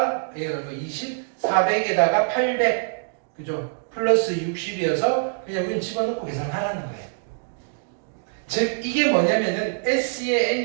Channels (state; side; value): silent; left; digital silence